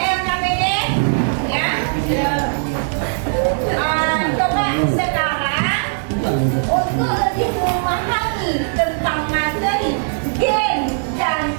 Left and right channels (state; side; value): silent; left; digital silence